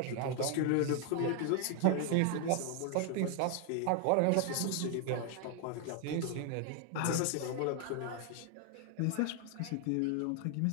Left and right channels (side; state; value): both; different; correlation 0.00